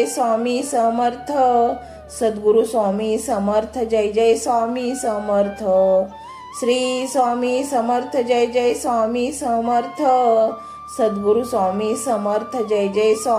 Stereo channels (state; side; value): identical; both; correlation 1.00